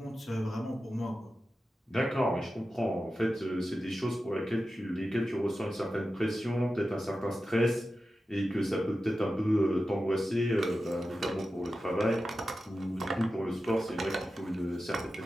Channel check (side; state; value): both; normal; correlation 0.92